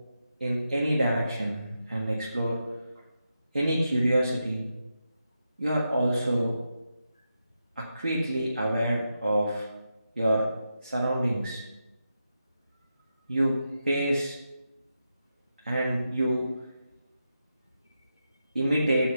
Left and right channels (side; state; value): both; inverted; correlation -0.87